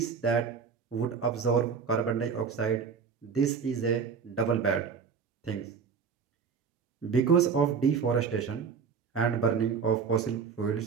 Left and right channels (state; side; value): quieter; left; 6.1 dB